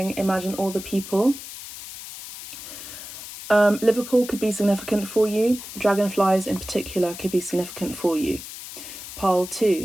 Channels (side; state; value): left; noise; hiss, 12 dB below the sound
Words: imagine all the people. Liverpool could be significant for you. Dragonflies in particular could be significant for you. Pearl